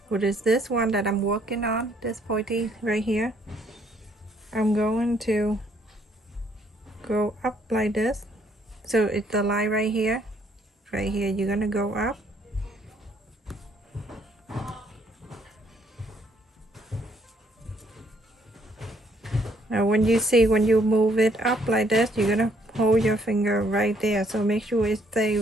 What is this one that I'm working on? This pointy right here. I'm going to go up like this. So it's the line right here. Right here, you're gonna go up. Now when you move it up like this, you're gonna hold your finger right there. So make sure it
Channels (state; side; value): normal; both; correlation 0.67